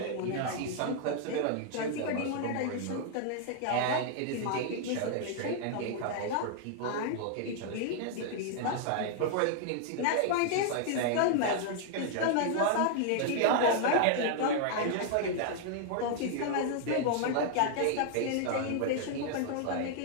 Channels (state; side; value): different; both; correlation 0.00